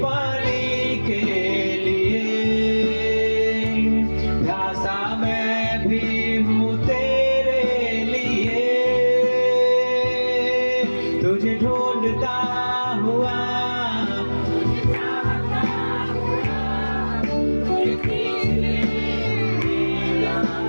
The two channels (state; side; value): inverted; both; correlation -1.00